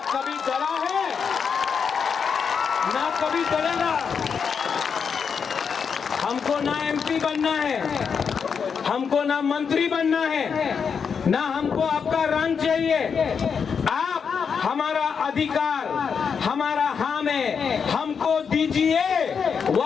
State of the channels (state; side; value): quieter; right; 6.4 dB